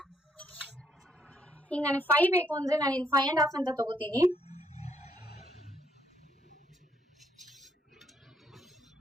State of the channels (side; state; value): both; normal; correlation 0.72